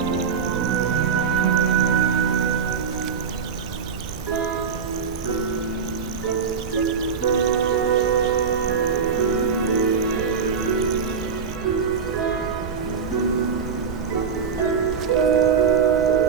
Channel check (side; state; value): left; quieter; 6.2 dB